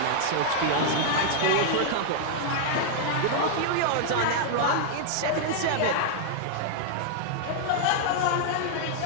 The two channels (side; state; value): both; different; correlation -0.01